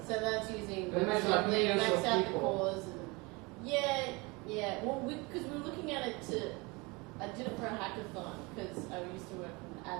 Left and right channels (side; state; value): left; quieter; 26.3 dB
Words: So that's using WebAssembly, maxed out the cores, and yeah. Well, because we were looking at it I did it for a hackathon because I used to work on an